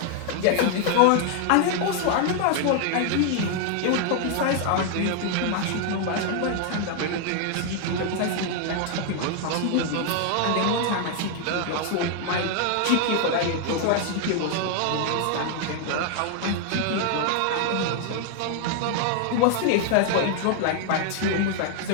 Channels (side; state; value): both; different; correlation 0.00